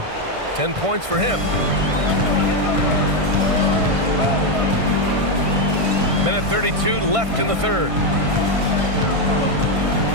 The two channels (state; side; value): late; left; 1.5 ms